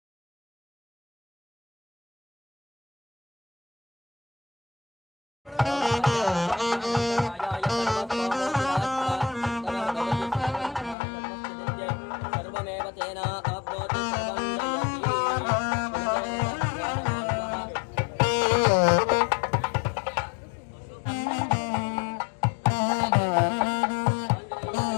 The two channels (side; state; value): right; drops out; at 11.0 s